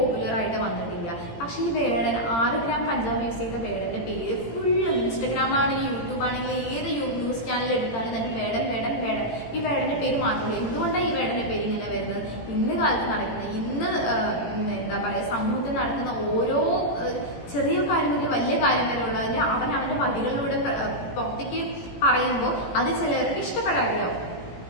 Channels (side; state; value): right; late; 18 ms